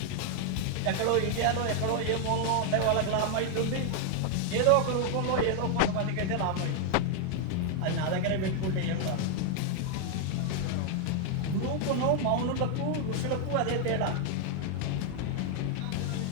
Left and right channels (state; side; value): different; both; correlation 0.00